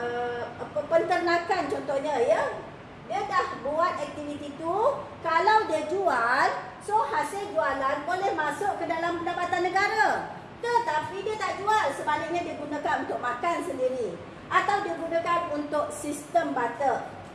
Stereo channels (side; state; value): both; identical; correlation 1.00